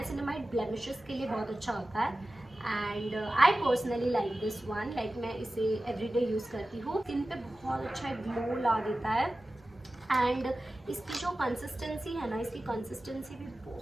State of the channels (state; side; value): normal; both; correlation 0.95